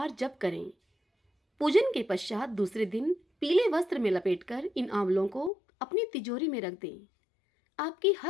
जप करें। पूजन के पश्चात दूसरे दिन पीले वस्त्र में लपेटकर इन आंवलों को अपनी तिजोरी में रख दें। आपकी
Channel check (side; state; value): right; drops out; at 5.5 s